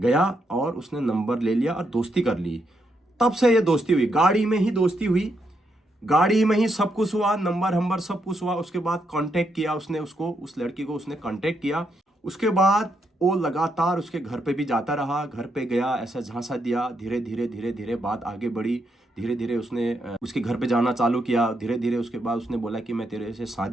और उसने नंबर ले लिया और दोस्ती कर ली। तब से ये दोस्ती हुई, गाड़ी में ही दोस्ती हुई, गाड़ी में ही सब कुछ हुआ, नंबर सब कुछ हुआ। उसके बाद कांटेक्ट किया उसने, उसको, उस लड़की को उसने कांटेक्ट किया। उसके बाद वो लगातार उसके घर पे भी जाता रहा, घर पे गया, ऐसा झांसा दिया। धीरे धीरे धीरे धीरे बात आगे बढ़ी। धीरे धीरे उसने उसके घर पे जाना चालू किया। धीरे धीरे उसके बाद उसने बोला कि मैं तेरे से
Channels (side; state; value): both; normal; correlation 0.79